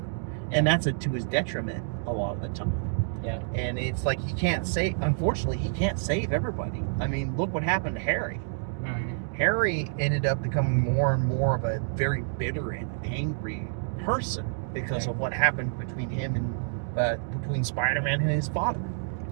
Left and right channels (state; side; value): silent; left; digital silence